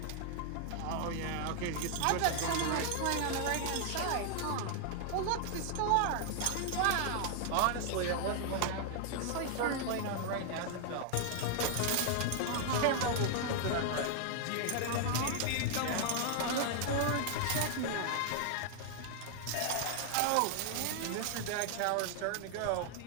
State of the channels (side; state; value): both; different; correlation 0.00